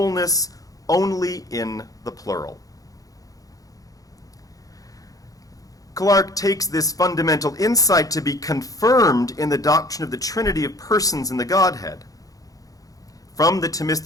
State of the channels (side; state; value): right; late; 0.17 ms